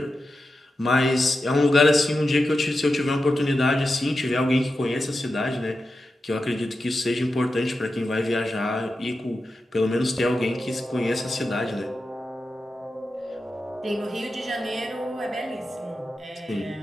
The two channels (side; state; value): both; normal; correlation 0.90